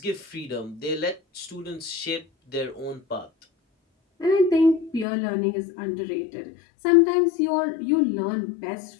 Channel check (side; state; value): right; drops out; at 5.1 s